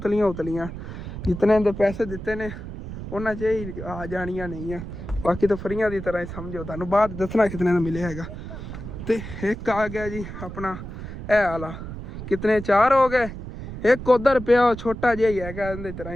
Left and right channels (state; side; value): noise; right; rumble, 9 dB below the sound